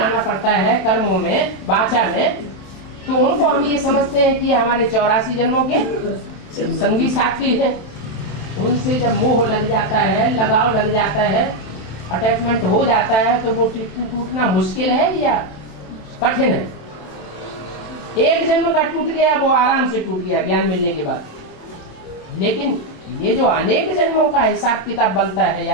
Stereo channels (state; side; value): late; right; 27 ms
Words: पड़ता है, कर्मों में, वाचा में, तो उनको हम ये समझते हैं कि हमारे 84 जन्मों के संगी साथी हैं। उनसे जब मोह लग जाता है, लगाव लग जाता है, अटैचमेंट हो जाता है, तो वो टूटना मुश्किल है या कठिन है? एक जन्म का टूट गया, वो आराम से टूट गया ज्ञान मिलने के बाद। लेकिन ये जो अनेक जन्मों का हिसाब किताब बनता है